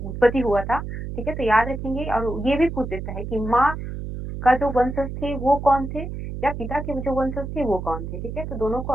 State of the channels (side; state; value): right; noise; hum, 7 dB below the sound